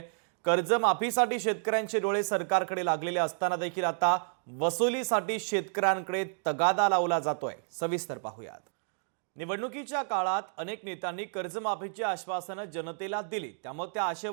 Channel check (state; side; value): silent; left; digital silence